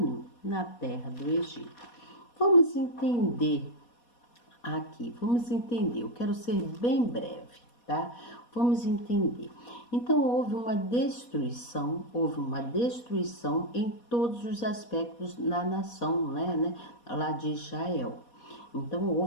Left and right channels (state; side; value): late; right; 4.2 ms